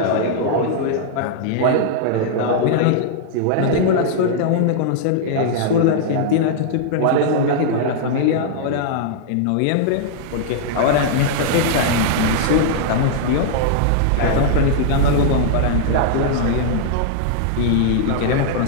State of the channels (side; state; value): both; different; correlation -0.01